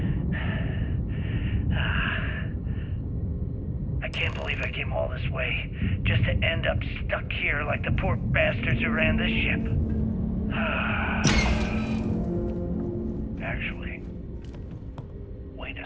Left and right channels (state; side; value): identical; both; correlation 1.00